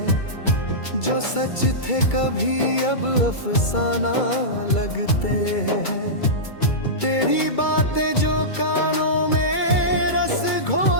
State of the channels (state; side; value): late; right; 2.3 ms